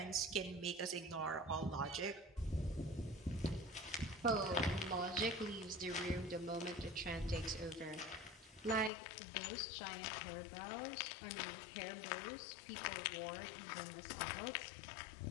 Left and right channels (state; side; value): drops out; right; at 8.9 s